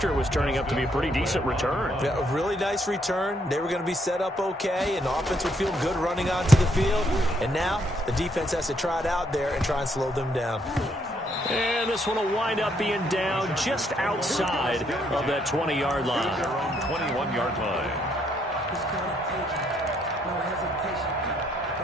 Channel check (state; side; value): normal; both; correlation 0.72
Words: it was turning up to be a pretty decent return. Yeah, a really nice return. They were going to be set up okay, and the offense would feel good running onto the field, and now the defense has to try it out there and try and slow them down. And this one will wind up being down just outside of that 20-yard line. Their own 21-yard line. No hesitation.